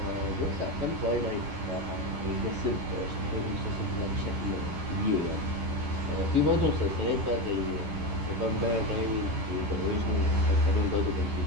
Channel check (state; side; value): late; left; 10 ms